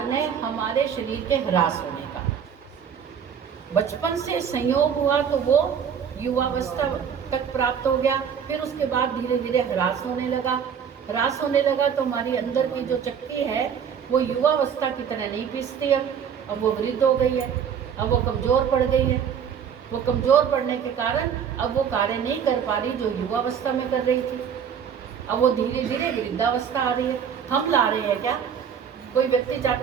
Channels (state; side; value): quieter; left; 7.7 dB